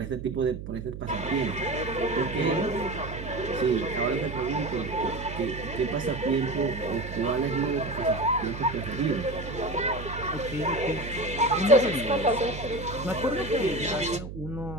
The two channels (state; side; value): noise; right; hum, 9 dB below the sound